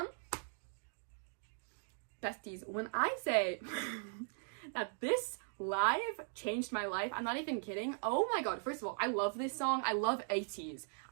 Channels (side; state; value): left; silent; digital silence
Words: Besties, when I say that this live changed my life, I'm not even kidding. Oh my god, first of all, I love this song. I love ATEEZ.